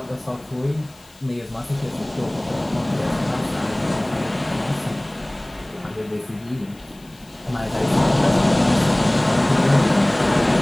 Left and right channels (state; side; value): noise; left; hiss, 27 dB below the sound